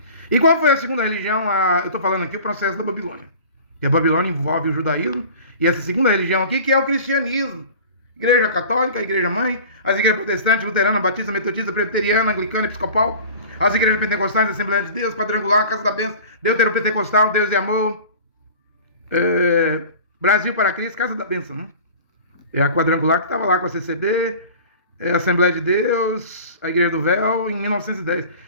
E qual foi a segunda religião? Eu estou falando aqui o processo da Babilônia. E a Babilônia envolve o judaísmo, e essa segunda religião aqui, que é o cristianismo. Igreja católica, a igreja mãe, as igrejas protestantes, luterana, batista, metodista, presbiteriana, anglicana, episcopal, as igrejas pentecostais, Assembleia de Deus, quadrangular, Casa da Bênção, deuteropentecostal, Deus e Amor, Brasil para Cristo, Casa da Bênção, né? É a quadrangular que estava lá com a CCB, a Assembleia de Deus, a Igreja do Véu, em 1910.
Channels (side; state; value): both; inverted; correlation -0.41